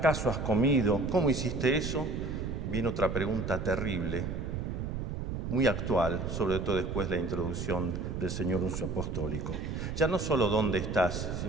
has comido? ¿Cómo hiciste eso? Viene otra pregunta terrible, muy actual, sobre todo después de la introducción del señor Nuncio Apostólico. Ya no solo dónde estás,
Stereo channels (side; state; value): right; noise; rumble, 4 dB below the sound